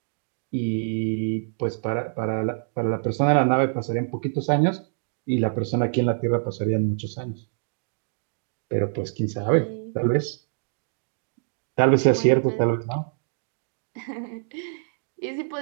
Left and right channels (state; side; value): silent; left; digital silence